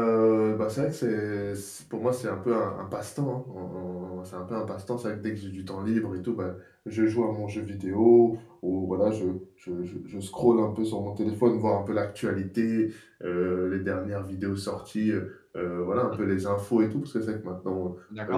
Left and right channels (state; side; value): identical; both; correlation 1.00